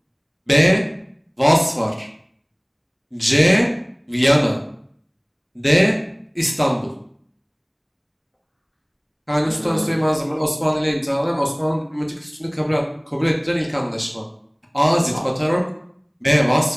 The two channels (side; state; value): both; identical; correlation 1.00